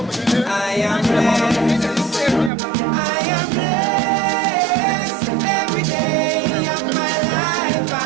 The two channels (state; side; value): drops out; left; at 2.5 s